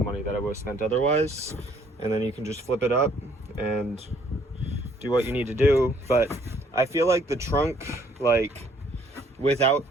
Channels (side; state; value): both; normal; correlation 0.63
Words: money that I would have spent otherwise. And then you can just flip it up and do what you need to do. But I feel like the trunk, like without